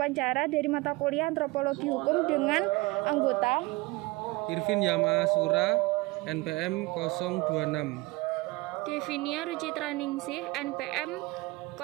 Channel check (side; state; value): left; quieter; 22.7 dB